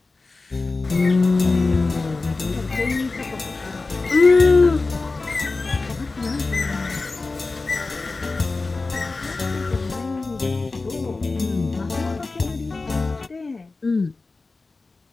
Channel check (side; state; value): right; quieter; 3.7 dB